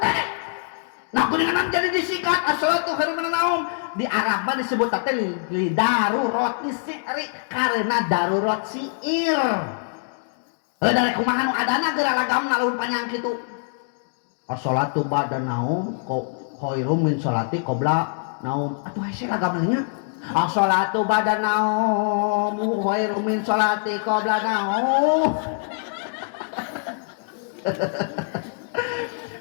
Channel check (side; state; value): right; silent; digital silence